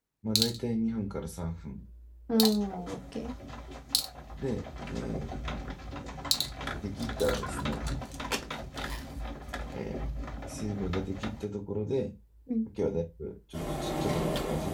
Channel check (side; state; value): both; identical; correlation 1.00